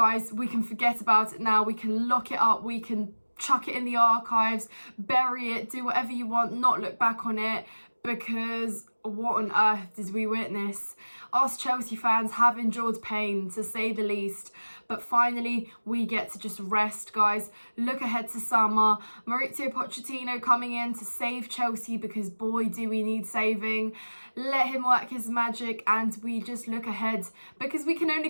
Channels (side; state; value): both; inverted; correlation -1.00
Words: we can forget about it now. We can lock it up. We can chuck it in the archives, bury it, do whatever you want, not look back on it because what on earth did we witness? Us Chelsea fans have endured pain, to say the least, but finally we get to just rest, guys. Look ahead to summer. Mauricio Pochettino coming in to save Chelsea because boy do we need saving. Let him work his magic and we just look ahead because we can